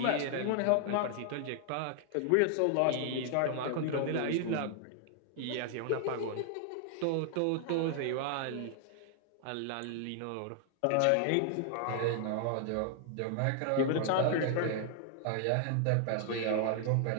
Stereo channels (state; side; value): different; both; correlation 0.00